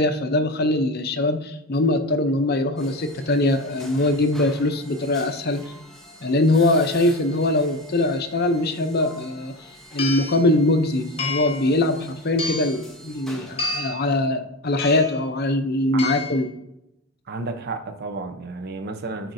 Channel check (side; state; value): both; normal; correlation 0.24